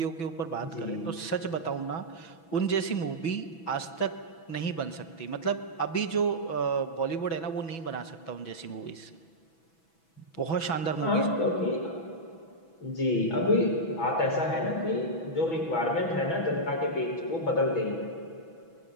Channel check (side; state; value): right; late; 6.1 ms